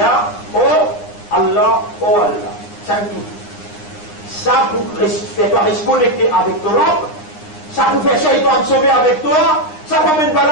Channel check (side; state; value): right; late; 9.8 ms